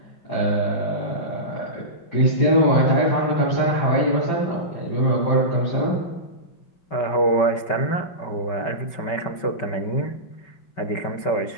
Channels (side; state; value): right; late; 5.4 ms